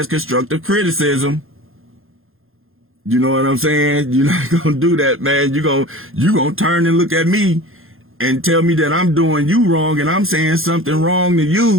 constructive criticism. You know what I'm saying? You're not gonna do that, man. You gonna turn and look at me and tell me that I'm doing you wrong and I'm saying something wrong to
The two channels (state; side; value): late; left; 0.60 ms